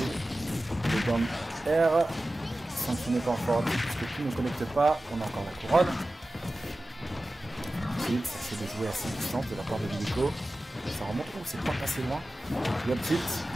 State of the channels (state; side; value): normal; both; correlation 0.95